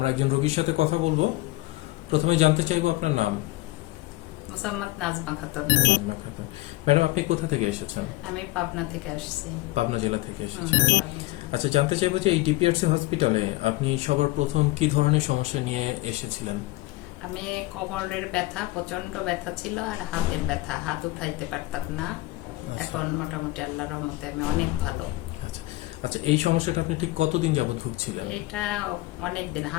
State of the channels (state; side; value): quieter; right; 19.6 dB